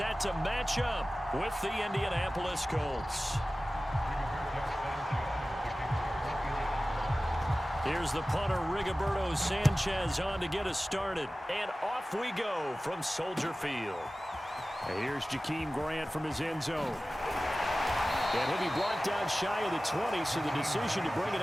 to match up with the Indianapolis Colts. Here's the punter, Rigoberto Sanchez, on to get us started. And off we go from Soldier Field. And here's Jakeem Grant from his end zone. And he'll be blocked down shy of the 20, so the decision to bring it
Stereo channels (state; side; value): normal; both; correlation 0.96